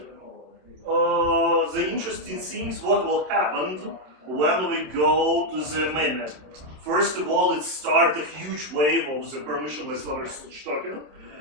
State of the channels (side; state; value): left; late; 27 ms